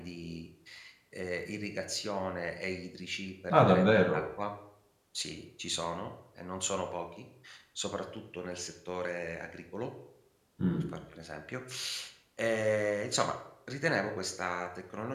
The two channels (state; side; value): identical; both; correlation 1.00